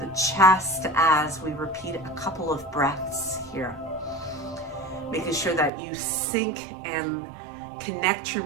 chest as we repeat a couple of breaths here. Making sure that you sync and connect your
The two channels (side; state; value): left; drops out; at 5.7 s